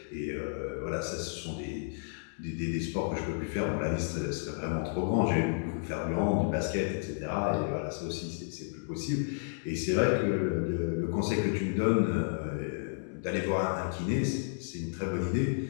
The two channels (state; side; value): silent; right; digital silence